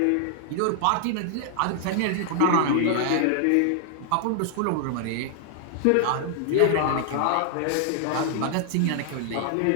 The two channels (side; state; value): both; different; correlation -0.01